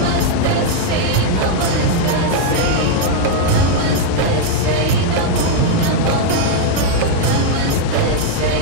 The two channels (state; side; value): different; both; correlation -0.01